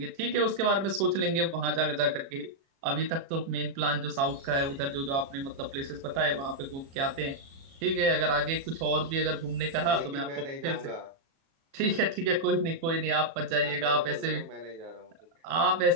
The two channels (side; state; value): left; late; 36 ms